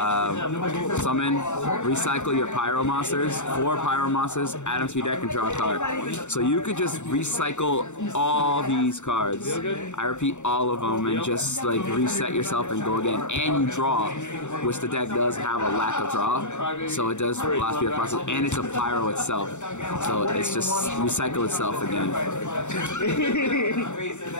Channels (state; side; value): late; right; 0.84 ms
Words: recycle your Pyro monsters, 4 Pyro monsters, add them to your deck and draw a card. So you could just recycle all these cards. I repeat, all of them, and just like reset yourself and go again. And you draw, which the deck does have a lack of draw, so it does last the process. And it's a Pyro itself, so it's just recycle itself again.